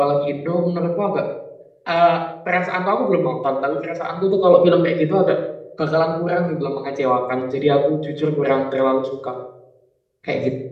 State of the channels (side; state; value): both; identical; correlation 1.00